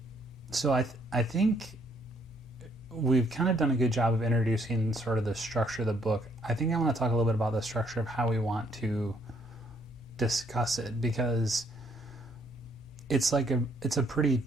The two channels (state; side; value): normal; both; correlation 0.68